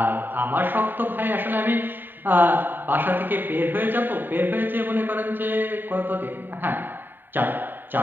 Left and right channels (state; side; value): late; left; 0.093 ms